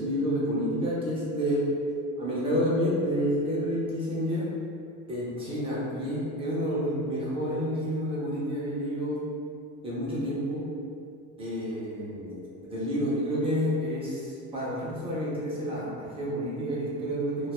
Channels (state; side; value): normal; both; correlation 0.28